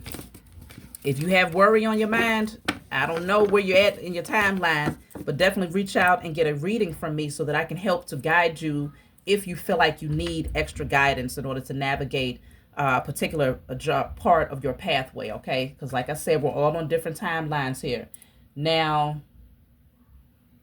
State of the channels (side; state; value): both; identical; correlation 1.00